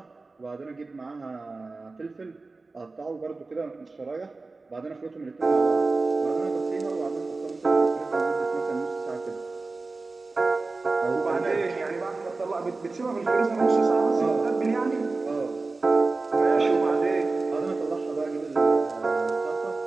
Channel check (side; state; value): left; quieter; 3.6 dB